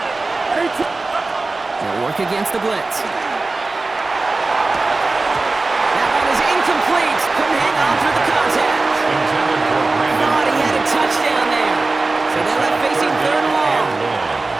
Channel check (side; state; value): left; quieter; 3.4 dB